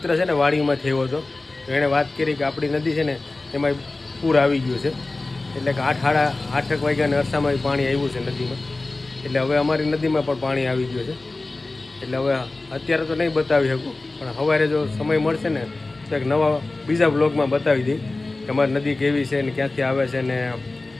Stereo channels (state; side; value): quieter; right; 3.2 dB